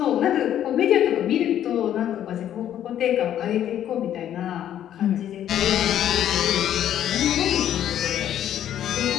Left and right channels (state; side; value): quieter; right; 10.8 dB